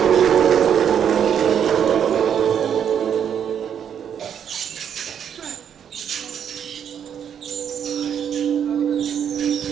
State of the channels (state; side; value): quieter; left; 8.5 dB